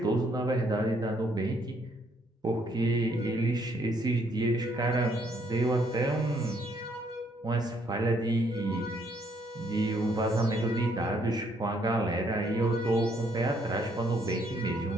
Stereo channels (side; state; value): both; normal; correlation 0.69